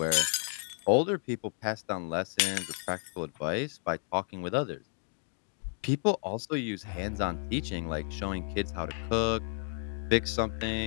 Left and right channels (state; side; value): silent; right; 56 dB below the other